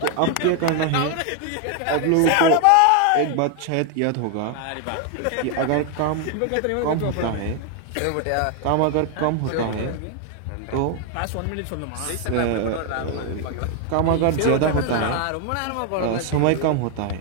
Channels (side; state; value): both; different; correlation 0.00